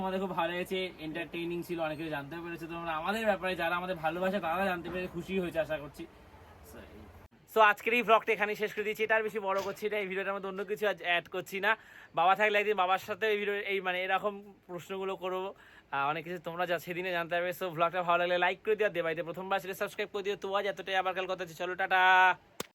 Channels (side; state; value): both; identical; correlation 1.00